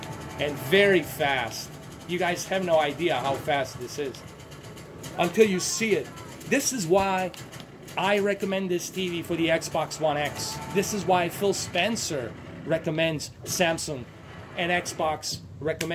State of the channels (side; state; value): both; identical; correlation 1.00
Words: and very fast. You guys have no idea how fast this is until you see it. This is why I recommend this TV for the Xbox One X. This is why Phil Spencer recommends Samsung, and Xbox